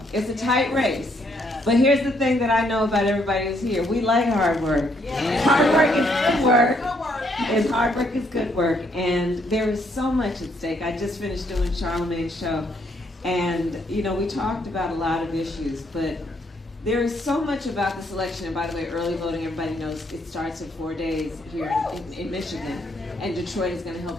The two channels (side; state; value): both; normal; correlation 0.71